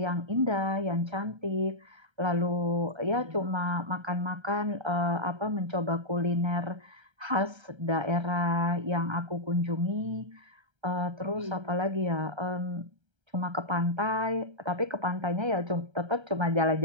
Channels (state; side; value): late; left; 1.3 ms